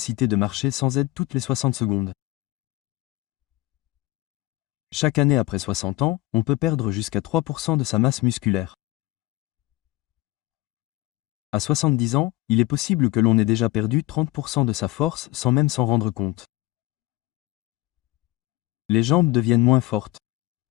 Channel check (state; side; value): quieter; right; 18.2 dB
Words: de marcher sans aide toutes les 60 secondes. Chaque année après 60 ans, on peut perdre jusqu'à 3% de sa masse musculaire. À 70 ans, il est possible que l'on ait déjà perdu 30% de sa force sans même s'en rendre compte. Les jambes deviennent moins fortes.